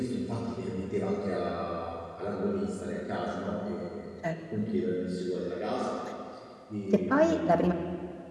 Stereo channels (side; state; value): both; identical; correlation 1.00